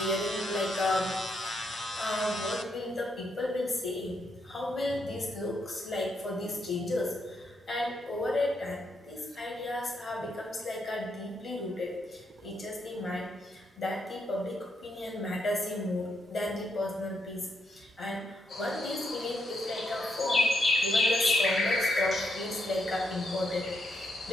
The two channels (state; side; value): normal; both; correlation 0.78